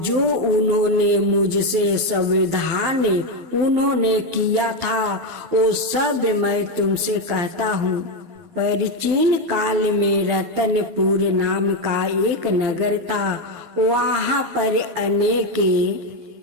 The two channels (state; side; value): late; left; 12 ms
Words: जो उन्होंने मुझसे संविधान उन्होंने किया था वो सब मैं तुमसे कहता हूँ। प्राचीन काल में रतनपुर नाम का एक नगर था। वहाँ पर अनेक